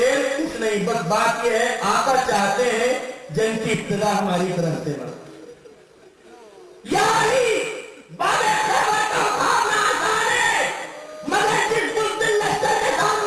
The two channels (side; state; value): both; identical; correlation 1.00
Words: کچھ نہیں، بس بات یہ ہے آقا چاہتے ہیں جن کی ابتدا ہماری طرف سے نہ. یعنی باب خیبر کا اٹھانا آسان ہے، مگر جس بزدل لشکر کے